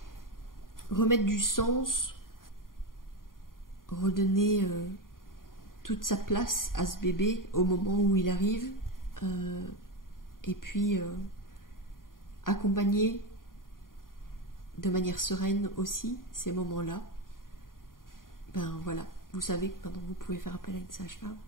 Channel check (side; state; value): right; late; 0.91 ms